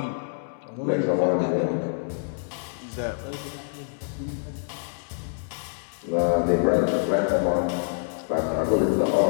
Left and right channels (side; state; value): right; silent; digital silence